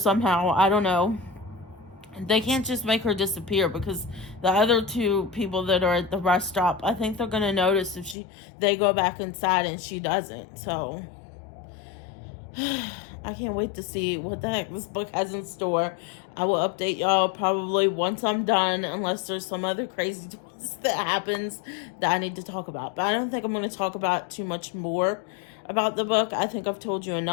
I don't know. They can't just make her disappear, because the other two people that are at the rest stop, I think they're going to notice if they go back inside and she doesn't. So I can't wait to see what the heck this book has in store. I will update y'all probably once I'm done, unless there's some other crazy twist that happens that I need to talk about. But I don't think I'm going to talk about too much more about the book. I think I've told you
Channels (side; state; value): right; drops out; at 8.2 s